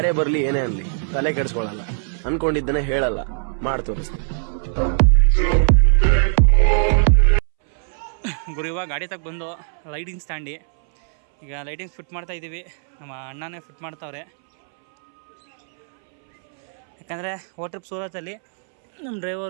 ಬರಲಿ ಏನೇ ಅನ್ಲಿ ತಲೆ ಕೆಡಿಸ್ಕೊಳ್ಳಲ್ಲ, ಅನ್ಕೊಂಡಿದ್ದನ್ನೇ ಹೇಳಲ್ಲ, ಮಾಡಿ ತೋರಿಸ್ತೀನಿ. ಗುರು ಇವಾಗ ಗಾಡಿ ತಗ ಬಂದು ಲೈಟಿಂಗ್ ಸ್ಟ್ಯಾಂಡಿ ಈಗ ಲೈಟಿಂಗ್ಸ್ ಫಿಟ್ ಮಾಡ್ತಾ ಇದ್ದೀವಿ. ನಮ್ಮ ಅಣ್ಣನೇ ಫಿಟ್ ಮಾಡ್ತಾವ್ರೆ. ಯಾಕಂದರೆ ಟ್ರಿಪ್ ಸೂರತಲ್ಲಿ ನಮ್ಮ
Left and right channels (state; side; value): silent; left; 64 dB below the other